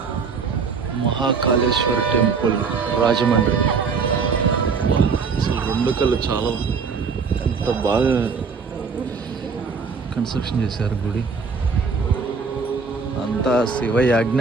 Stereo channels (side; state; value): left; quieter; 5.2 dB